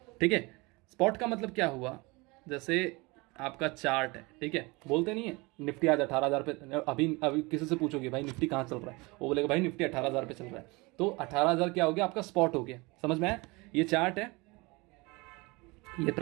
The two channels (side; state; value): left; quieter; 25.2 dB